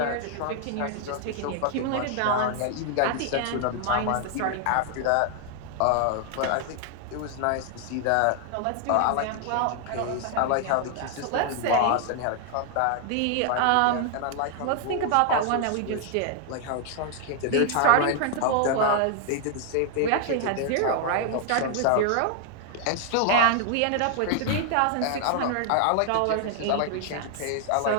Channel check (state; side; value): different; both; correlation 0.00